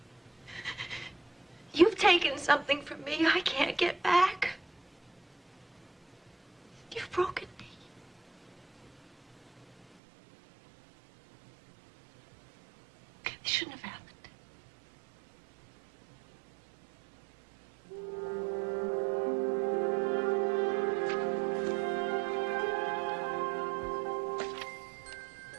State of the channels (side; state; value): left; drops out; at 9.9 s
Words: You've taken something from me I can't get back. You've broken me. This shouldn't have happened.